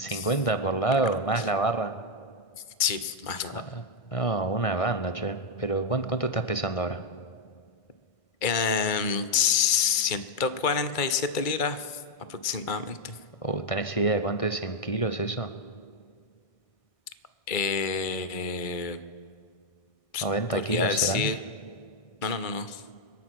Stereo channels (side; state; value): right; late; 1.6 ms